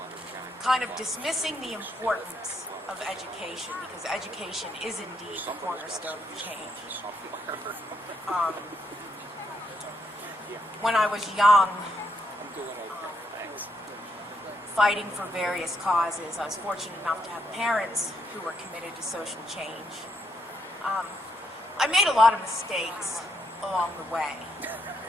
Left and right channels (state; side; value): normal; both; correlation 0.76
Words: kind of dismissing the importance of education, because education is indeed the cornerstone of change. When I was young, fighting for various causes, I was fortunate enough to have parents who were committed to social change. I made a lot of mistakes along the way.